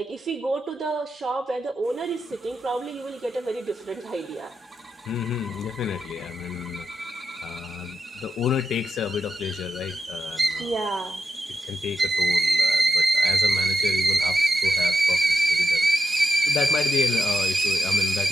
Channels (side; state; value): both; normal; correlation 0.86